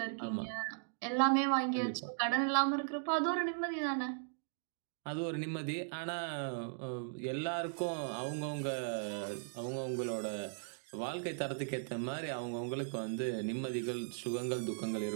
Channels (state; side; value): silent; left; digital silence